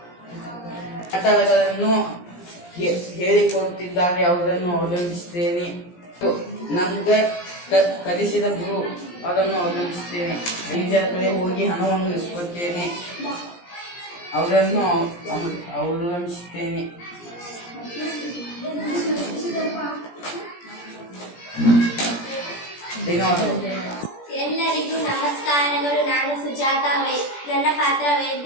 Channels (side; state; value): right; late; 17 ms